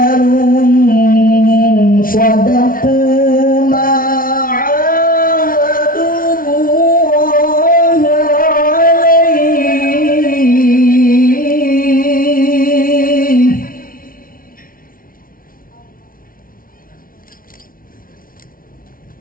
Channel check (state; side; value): late; right; 0.42 ms